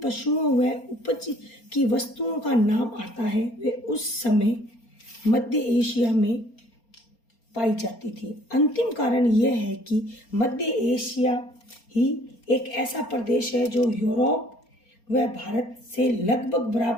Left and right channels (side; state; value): right; late; 4.3 ms